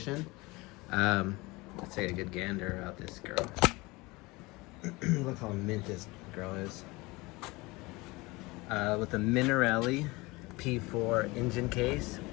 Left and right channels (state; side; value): quieter; right; 23.1 dB